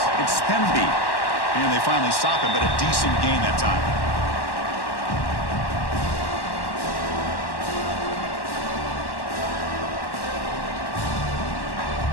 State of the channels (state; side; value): late; right; 1.1 ms